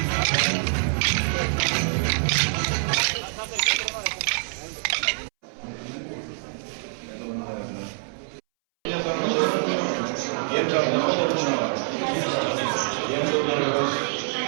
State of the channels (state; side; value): silent; left; 62 dB below the other